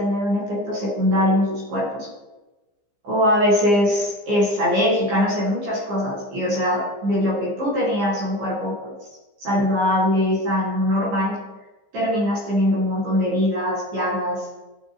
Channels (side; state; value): left; late; 15 ms